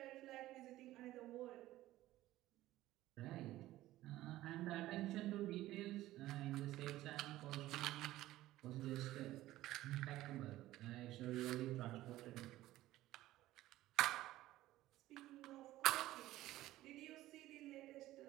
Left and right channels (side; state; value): left; quieter; 15.7 dB